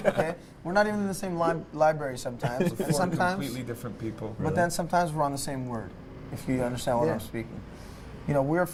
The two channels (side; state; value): both; identical; correlation 1.00